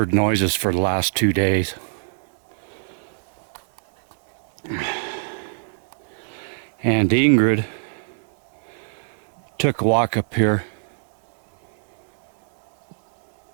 noises for the last 2 days. And Ingrid took a walk up here.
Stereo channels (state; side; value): silent; left; digital silence